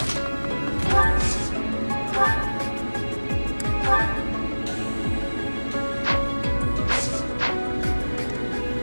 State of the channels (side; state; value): both; inverted; correlation -1.00